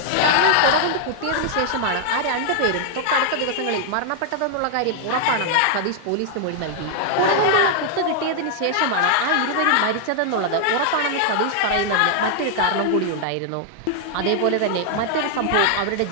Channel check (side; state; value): both; different; correlation 0.00